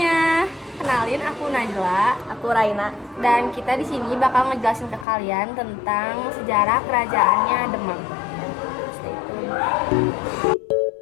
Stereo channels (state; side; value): drops out; right; at 5.1 s